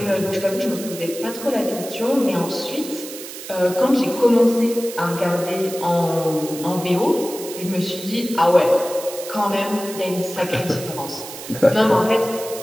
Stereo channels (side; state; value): right; noise; hiss, 12 dB below the sound